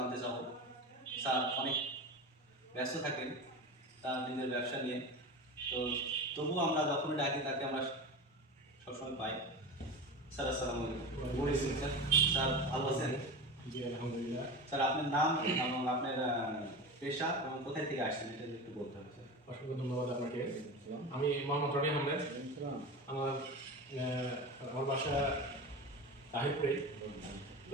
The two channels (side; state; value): both; normal; correlation 0.27